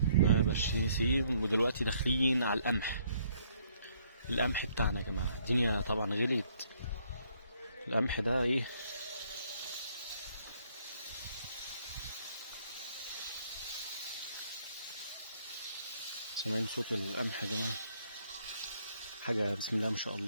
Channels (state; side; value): inverted; both; correlation -0.67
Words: ده برسيم. ودلوقتي داخلين على القمح بتاعنا يا جماعه. الدنيا طبعا غليت. القمح ده ايه، سامعين صوت القمح يا جماعه؟ حاجه بسم الله ما شاء